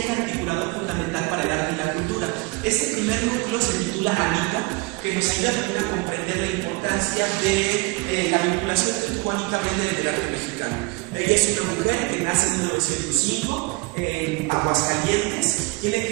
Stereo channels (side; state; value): left; quieter; 24.6 dB